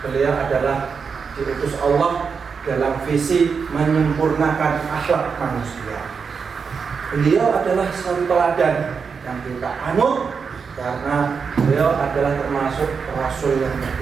beliau adalah diutus Allah dalam visi menyempurnakan akhlak manusia. Beliau adalah satu teladan yang kita anut karena beliau adalah termasuk rasul yang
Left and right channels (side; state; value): left; quieter; 5.7 dB